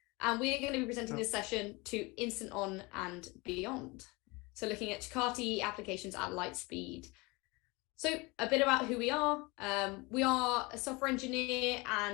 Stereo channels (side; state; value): right; quieter; 25.4 dB